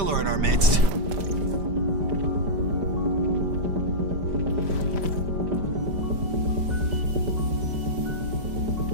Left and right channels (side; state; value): left; late; 5.1 ms